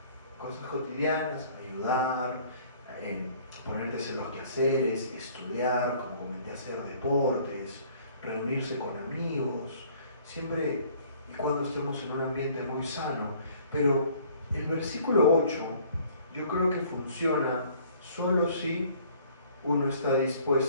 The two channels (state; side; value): inverted; both; correlation -0.56